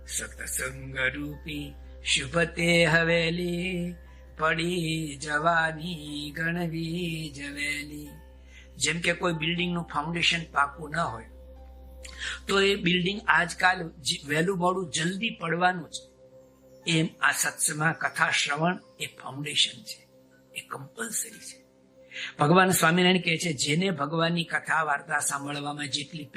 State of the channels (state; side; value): identical; both; correlation 1.00